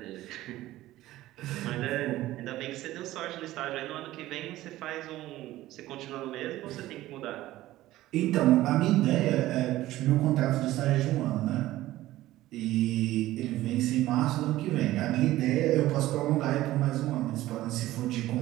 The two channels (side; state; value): left; quieter; 15.8 dB